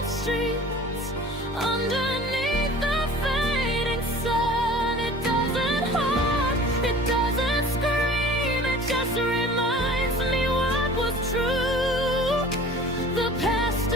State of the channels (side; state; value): both; normal; correlation 0.44